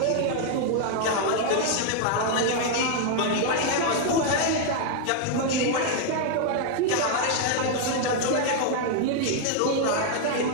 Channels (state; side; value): different; both; correlation 0.00